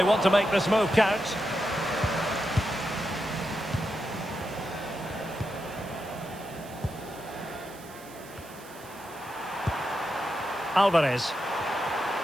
want to make this move count. Alvarez.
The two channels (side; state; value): right; noise; hiss, 20 dB below the sound